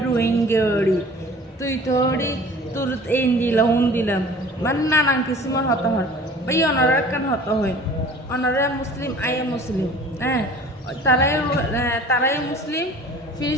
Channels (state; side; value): normal; both; correlation 0.46